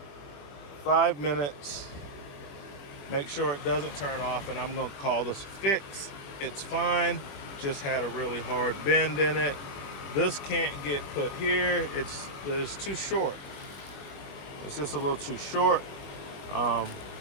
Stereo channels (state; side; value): late; right; 21 ms